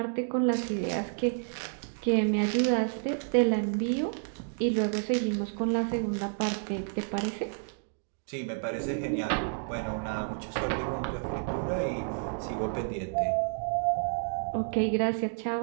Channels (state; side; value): silent; left; digital silence